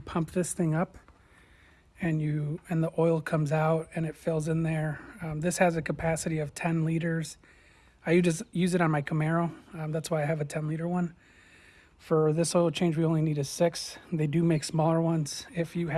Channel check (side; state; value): both; identical; correlation 1.00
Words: this thing up and the oil comes out and it fills in there. This has a capacity of 10 liters. I just use it on my Camaro. That's why I have a 10-liter one. For this oil change, we only need a 6. They do make smaller ones if you